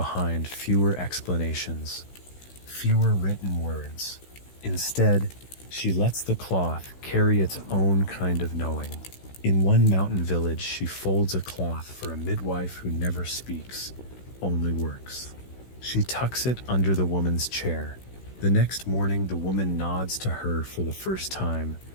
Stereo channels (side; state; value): right; late; 16 ms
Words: fewer explanations, fewer written words. Instead, she lets the cloth carry its own kind of knowing. In one mountain village, she folds a cloth for a midwife who never speaks, only works. She tucks it under the woman's chair. The next morning, the woman nods to her for the first time,